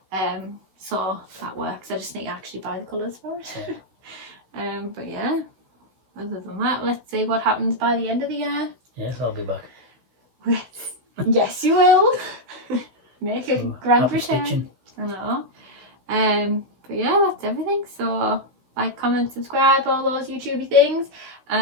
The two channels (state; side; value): late; left; 16 ms